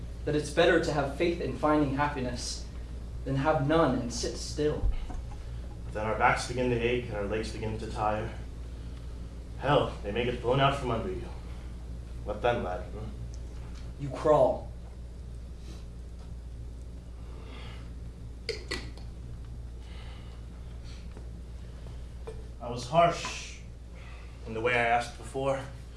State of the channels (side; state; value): both; identical; correlation 1.00